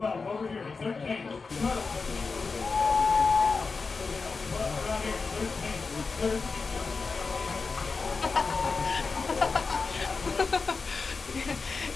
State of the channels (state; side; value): quieter; right; 4.5 dB